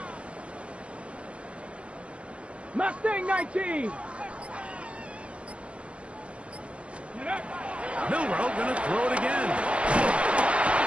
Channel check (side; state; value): left; late; 0.061 ms